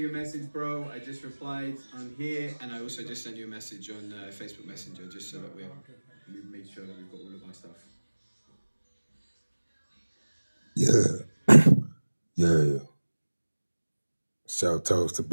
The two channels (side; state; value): both; inverted; correlation -1.00